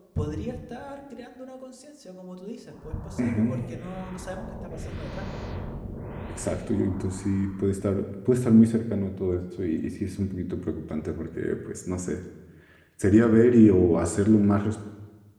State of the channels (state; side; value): identical; both; correlation 1.00